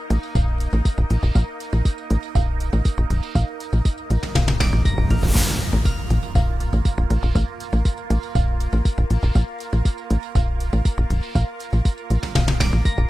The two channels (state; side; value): normal; both; correlation 0.96